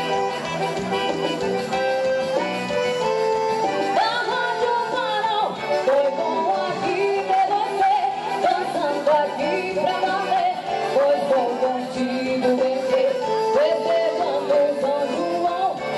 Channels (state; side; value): identical; both; correlation 1.00